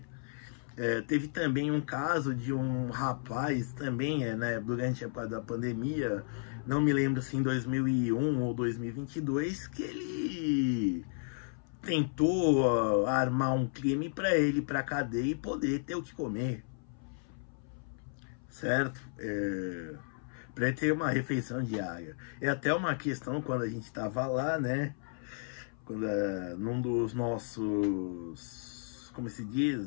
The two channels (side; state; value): right; silent; 56 dB below the other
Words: Teve também um caso de um rapaz também, né, durante a época da pandemia, não me lembro se em 2001 ou 2022, que ele tentou armar um crime para ele ir para cadeia e poder ter o que comer, certo? Para ele ter uma refeição diária. É até uma questão quando a gente estava lá, né? Quando, num dos nossos, como se diz,